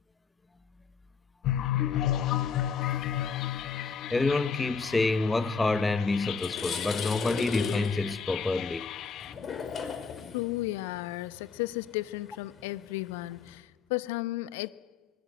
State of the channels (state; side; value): quieter; right; 5.4 dB